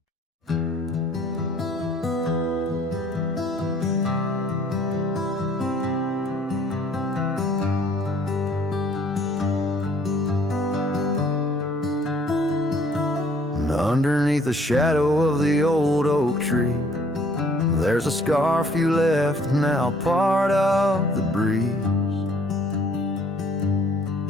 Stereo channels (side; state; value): both; normal; correlation 0.59